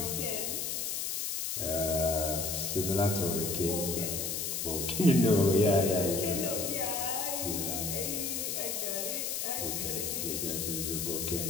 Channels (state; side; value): noise; left; hiss, 1 dB below the sound